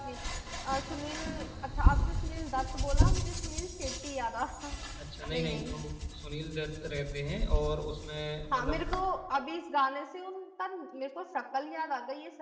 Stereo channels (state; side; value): identical; both; correlation 1.00